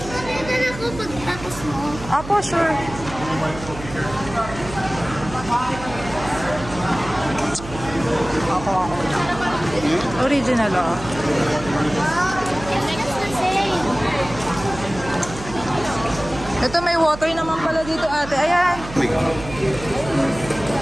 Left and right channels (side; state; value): right; noise; hum, 12 dB below the sound